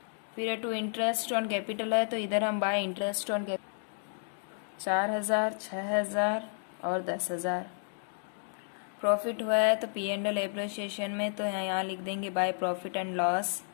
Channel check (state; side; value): silent; right; digital silence